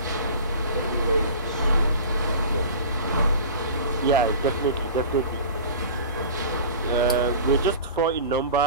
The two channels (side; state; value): both; inverted; correlation -0.37